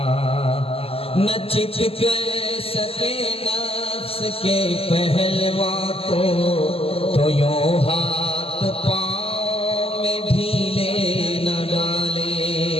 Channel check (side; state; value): right; late; 0.28 ms